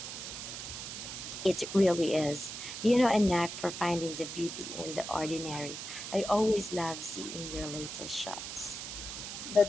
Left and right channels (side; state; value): right; noise; hiss, 7 dB below the sound